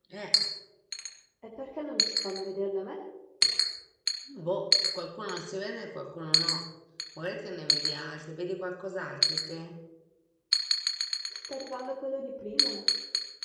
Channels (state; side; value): identical; both; correlation 1.00